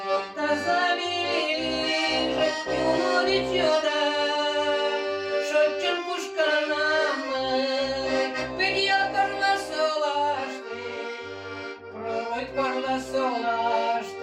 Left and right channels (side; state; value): both; identical; correlation 1.00